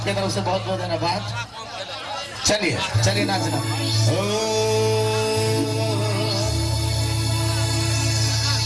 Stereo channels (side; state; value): both; identical; correlation 1.00